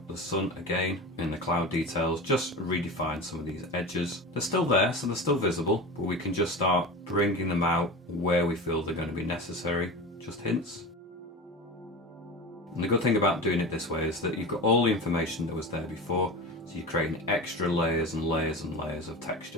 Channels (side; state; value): both; normal; correlation 0.28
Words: the sun again in the cloud details, just redefine some of these edges. They're still there, so they're still visible, but we can just start bringing them out where we feel they're going to be necessary, just hints. And the good thing about doing it this way is that you've got all the information that was there before, so you're creating extra layers and layers and layers of